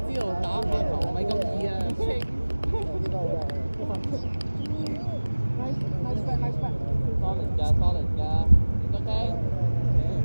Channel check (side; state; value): both; inverted; correlation -1.00